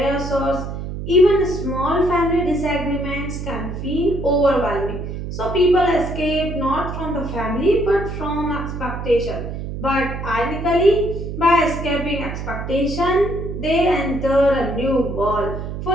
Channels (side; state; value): right; noise; hum, 6 dB below the sound